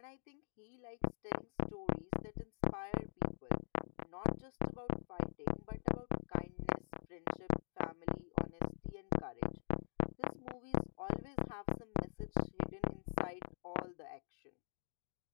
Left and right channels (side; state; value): right; silent; digital silence